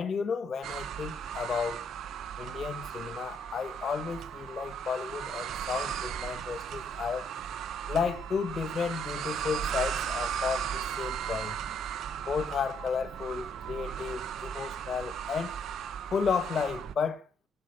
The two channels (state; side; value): normal; both; correlation 0.70